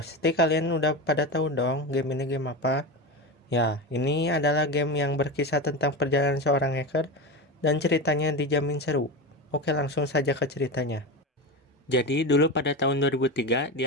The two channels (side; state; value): both; normal; correlation 0.21